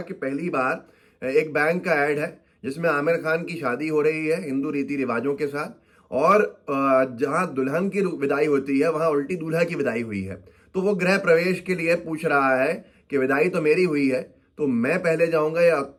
कि पहली बार एक बैंक का ऐड है जिसमें आमिर खान की शादी हो रही है हिंदू रीति रिवाजों के साथ, और जहां दुल्हन की विदाई होती है वहां उल्टी दूल्हा की विदाई हुई है। तो वो गृह प्रवेश के लिए पूछ रहा है कि विदाई तो मेरी हुई है, तो मैं पहले जाऊंगा या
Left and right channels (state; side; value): identical; both; correlation 1.00